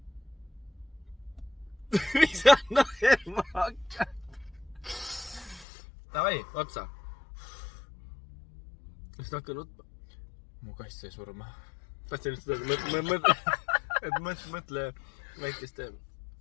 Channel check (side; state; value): right; drops out; at 5.7 s